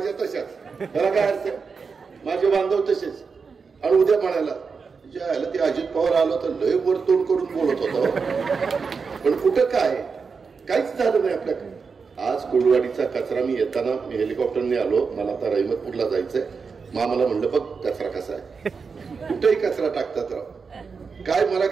तशाच, त्याला काय अर्थ? माझे बांधव तसेच. आणि उद्या म्हणायला ज्याला ते अजित पवार आलो तर लय वर तोंड करून बोलत होता, पण कुठं काय काहीच झालं नाही आपल्याकडे. आज कोळवाडीचा कचरा, मी येताना मी हेलिकॉप्टरने आलो, मला आता रहिमतपूरला जायचंय. मामाला म्हणलं बघ कचरा कसा आहे, कुठेही कचरा टाकतात राव, काय मला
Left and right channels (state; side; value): quieter; left; 5.2 dB